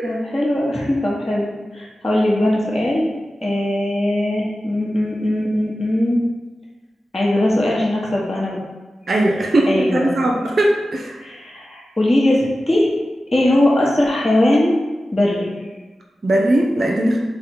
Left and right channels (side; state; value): both; normal; correlation 0.94